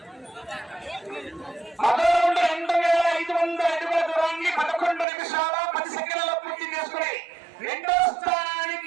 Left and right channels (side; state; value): left; drops out; at 5.1 s